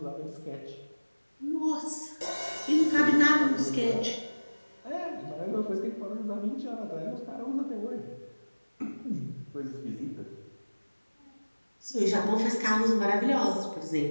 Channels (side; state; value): both; inverted; correlation -1.00